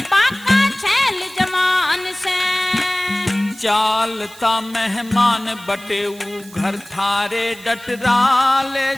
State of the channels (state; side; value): noise; right; hiss, 21 dB below the sound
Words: बाका छैल जवान से। चालता मेहमान बटेऊ घर थारे डटरा, ले